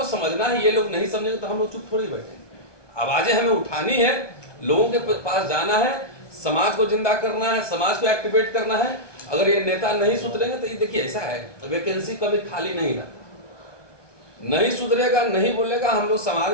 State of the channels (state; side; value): late; right; 1.2 ms